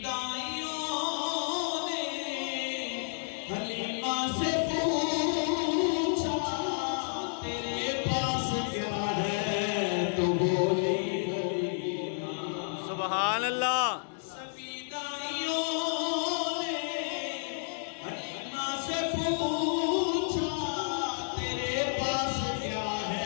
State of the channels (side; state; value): right; silent; digital silence